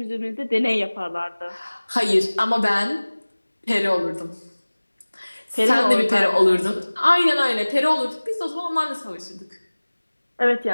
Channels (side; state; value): both; inverted; correlation -1.00